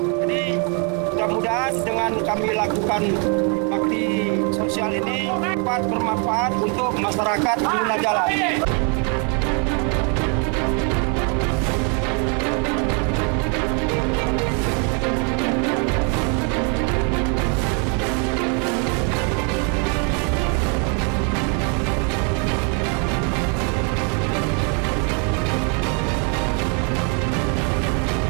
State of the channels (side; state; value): left; quieter; 37.3 dB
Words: Jadi mudah-mudahan dengan kami lakukan bakti sosial ini dapat bermanfaat untuk masyarakat pengguna jalan.